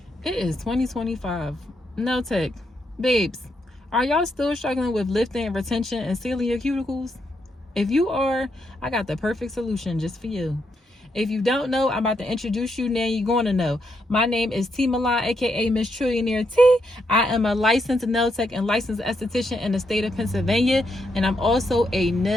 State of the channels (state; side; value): normal; both; correlation 0.79